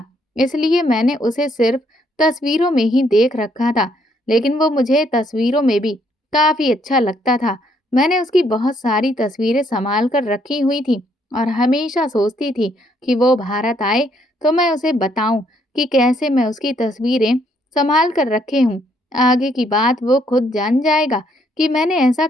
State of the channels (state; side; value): normal; both; correlation 0.70